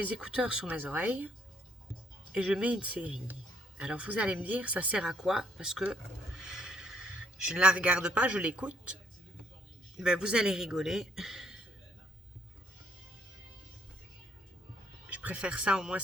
écouteurs sur mes oreilles. Et je mets une série. Alors vous allez me dire, ça sert à quoi? Parce que je ne la regarde pas, je l'écoute. Ben, vous allez rigoler. Je préfère ça, au moins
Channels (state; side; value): normal; both; correlation 0.68